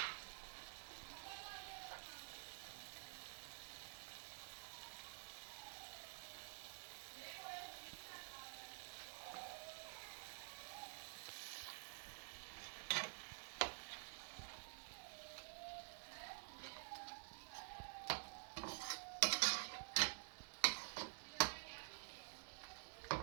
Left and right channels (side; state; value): left; silent; digital silence